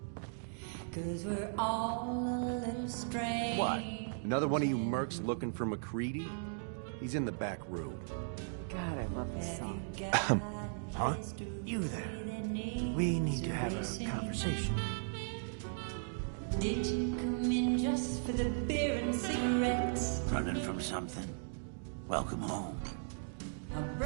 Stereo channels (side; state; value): left; silent; digital silence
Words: 'cause we're all a little strange. What? Another one of you mercs looking for McCready? He's in the back room. God, I love this song. Huh? You there. We need to have a conversation. Did you come in just for the beer and cigarettes? Running from something? Welcome home.